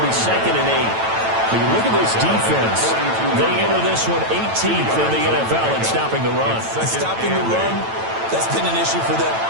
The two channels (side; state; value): left; late; 9.0 ms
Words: be 2nd and 8. When you look at this defense, they enter this one 18th in the NFL in stopping the run. Stopping the run, that's been an issue for them